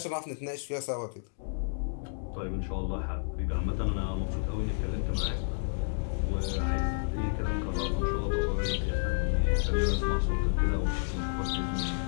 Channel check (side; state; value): right; silent; digital silence